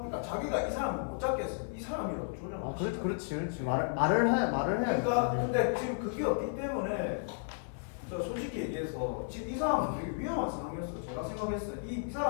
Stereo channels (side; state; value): right; silent; 55 dB below the other